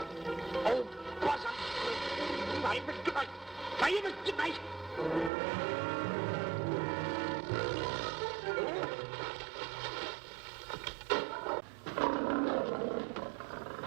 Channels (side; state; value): left; drops out; at 5.3 s